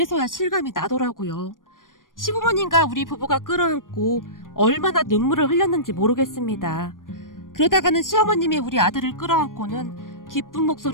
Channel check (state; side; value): late; right; 0.90 ms